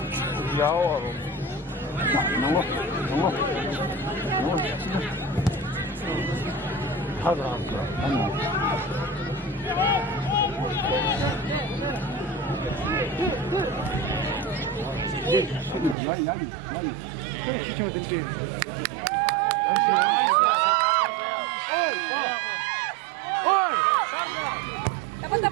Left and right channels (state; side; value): drops out; left; at 16.0 s